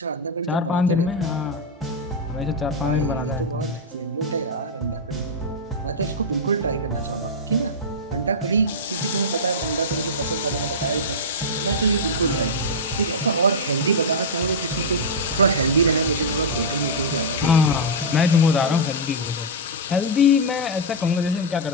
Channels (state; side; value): normal; both; correlation -0.05